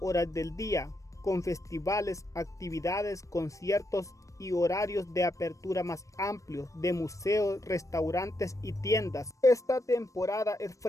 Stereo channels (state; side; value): late; right; 0.16 ms